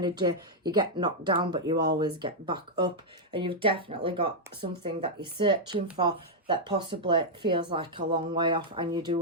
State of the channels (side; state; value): both; normal; correlation -0.04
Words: You get knocked down, but you always get back up, and you've definitely got something that you're searching for. that possibly feels like a long way off, and you